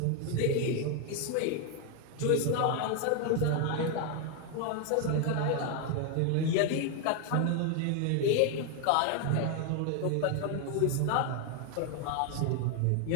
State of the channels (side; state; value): both; different; correlation 0.01